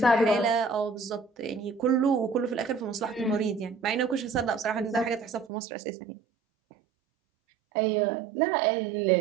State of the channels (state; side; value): drops out; left; at 5.5 s